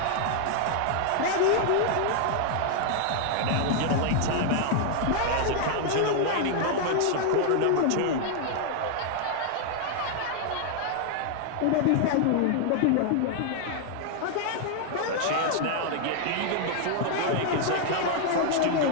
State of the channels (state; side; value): different; both; correlation 0.00